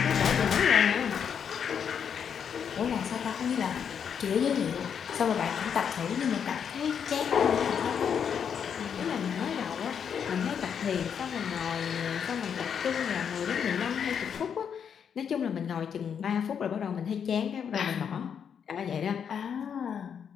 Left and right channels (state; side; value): quieter; right; 7.6 dB